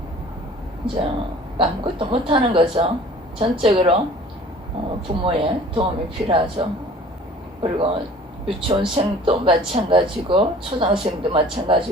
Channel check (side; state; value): both; normal; correlation 0.48